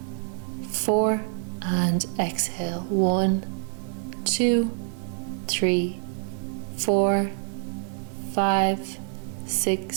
4. And exhale. 1, 2, 3, 4, 5,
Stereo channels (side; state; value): left; silent; 55 dB below the other